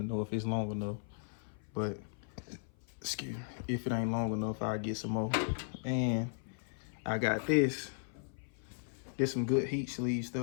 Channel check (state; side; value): silent; right; 53 dB below the other